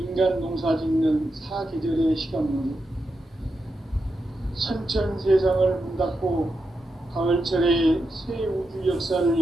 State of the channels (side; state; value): both; normal; correlation 0.87